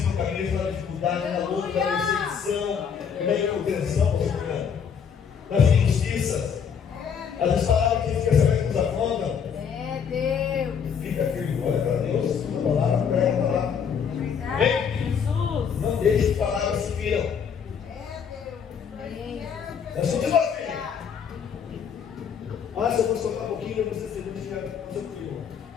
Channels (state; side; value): quieter; right; 7.1 dB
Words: no caminho da dificuldade, na luta, na perseguição, na incontenção, nas injustiças. Às vezes falavam que fica sabendo que nos afrontam. Deus. Fica firme, olha para Deus, a palavra, prega a palavra. Jesus. Não deixe que palavras se viram. É só de você. Se eu fosse tocar um pouquinho, eu vou ser segundo de ficar com o seu filho.